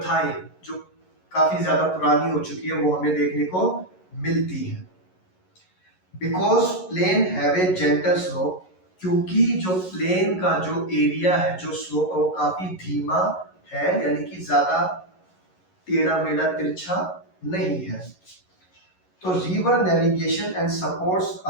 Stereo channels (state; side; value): late; right; 11 ms